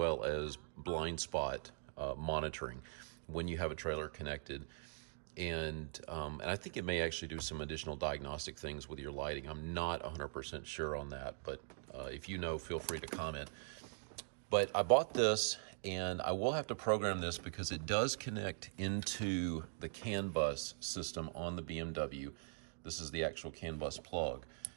as blind spot monitoring when you have a trailer connected. And I think it may actually do some additional diagnostic things with your lighting. I'm not 100% sure on that, but if you know, feel free to comment. But I bought this, and I will have to program this because it does connect into the CAN bus system on the BMW. This is the actual CAN bus plug.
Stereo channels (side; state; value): left; silent; digital silence